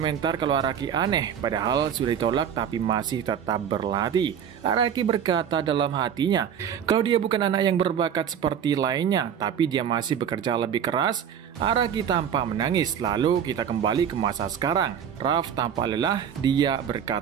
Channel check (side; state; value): left; quieter; 8.5 dB